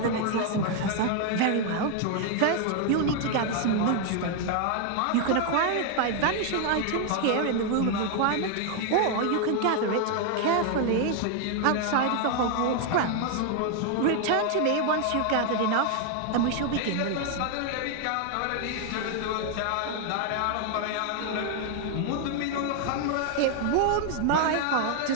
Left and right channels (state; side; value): different; both; correlation 0.00